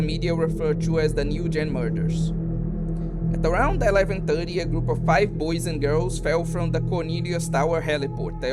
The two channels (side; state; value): both; identical; correlation 1.00